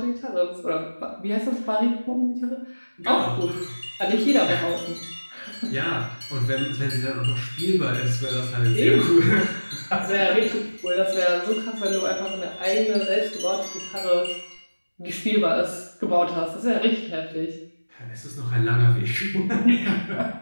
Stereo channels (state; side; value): inverted; both; correlation -1.00